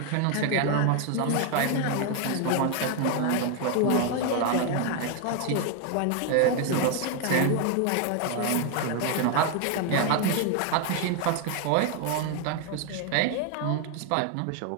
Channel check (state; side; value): different; both; correlation 0.01